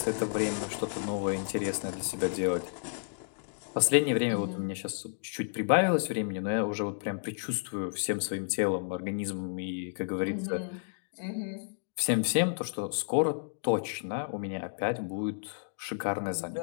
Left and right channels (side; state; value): right; silent; digital silence